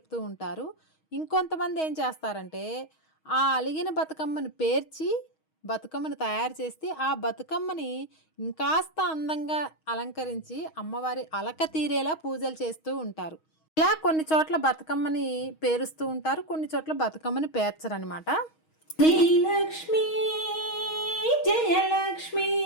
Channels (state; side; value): late; right; 6.3 ms